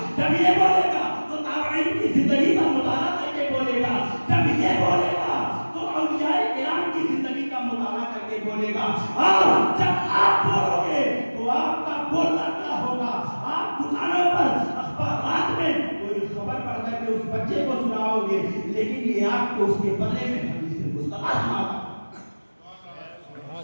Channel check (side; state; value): both; inverted; correlation -1.00